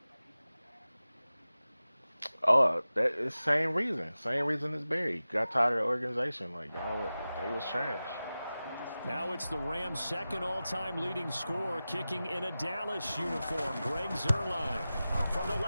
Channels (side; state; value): both; inverted; correlation -0.95